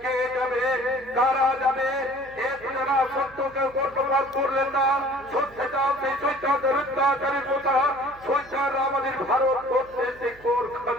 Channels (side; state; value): right; noise; hum, 24 dB below the sound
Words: কে যাবে, কারা যাবে? যারা সত্যকে বর্তমান করলেন না, সত্যে যাও সেই শৈতানের অত্যাচারের কথা। শৈতান আমাদের ভারতবর্ষে যে কোর